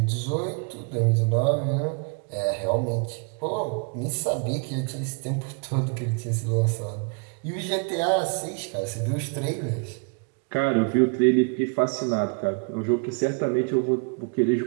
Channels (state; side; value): quieter; left; 35.0 dB